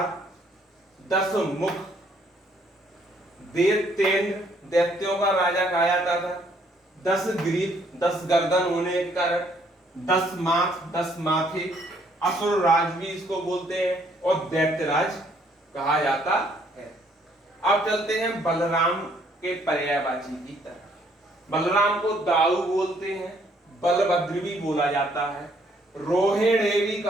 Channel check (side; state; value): both; normal; correlation 0.66